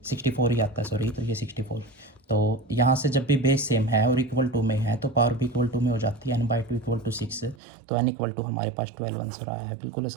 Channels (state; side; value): drops out; left; at 7.6 s